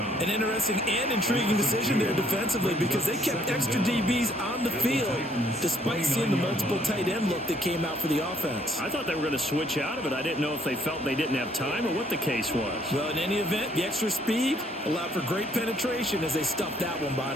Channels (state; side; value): normal; both; correlation 0.65